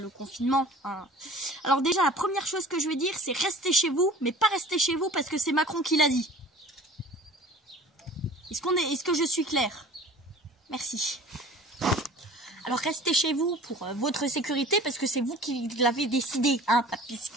confinement. Hein. Alors déjà, la première chose que je vais dire, c'est restez chez vous, mais pas restez chez vous parce que c'est Macron qui l'a dit. Est-ce que je suis claire? Merci. Alors restez chez vous pour votre sécurité parce que c'est vous qui l'avez décidé, hein,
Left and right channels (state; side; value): normal; both; correlation 0.44